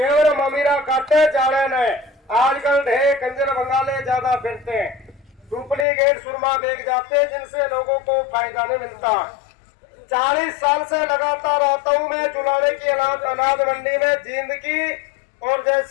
ममीरा काटे जाड़े ने। आजकल ढेर कंजर बंगाले ज्यादा फिरते हैं, डुप्लीकेट सुरमा बेच जाते, जिनसे लोगों को फायदा नहीं मिलता। 40 साल से लगातार आता हूँ मैं चुलाने की अनाज मंडी में, जींद की और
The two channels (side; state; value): right; drops out; at 5.9 s